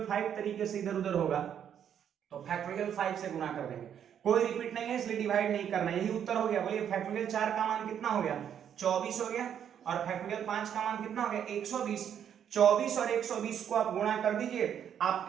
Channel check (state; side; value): quieter; left; 9.0 dB